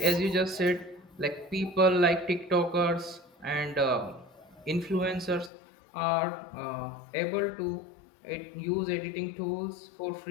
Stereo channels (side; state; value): right; drops out; at 5.5 s